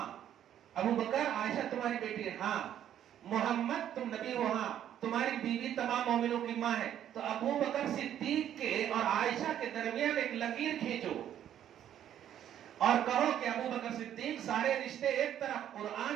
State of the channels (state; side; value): quieter; left; 10.6 dB